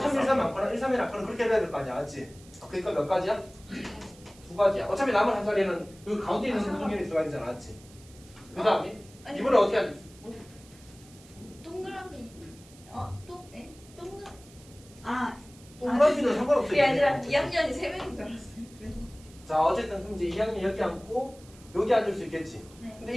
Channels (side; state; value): right; noise; hiss, 24 dB below the sound